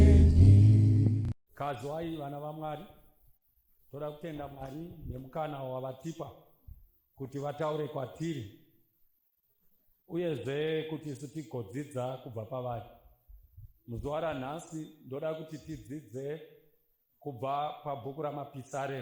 Kazwai vana vaMwari, toda kutenda Mwari nemukana wavatipa kuti vataure kwatiri uyezve kuti isu tigodzidza kubva pavari. Muzuva ranhasi ndoda kuti tidzidze kubva pabhuku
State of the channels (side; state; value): both; identical; correlation 1.00